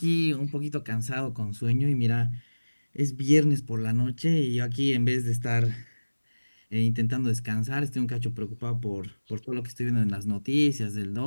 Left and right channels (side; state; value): both; inverted; correlation -1.00